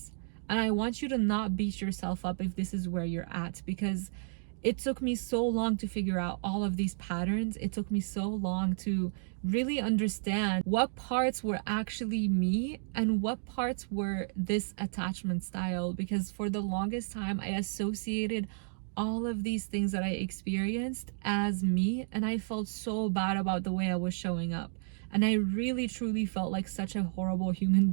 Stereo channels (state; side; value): silent; left; digital silence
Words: And I want you to not beat yourself up if this is where you're at, because it took me so long to figure out all of these patterns. It took me so long to really understand what parts were actually me and what parts were this attachment style, because for the longest time I associated all of these things that I experienced as me, and I felt so bad about the way I was showing up. And I really truly felt like such a horrible human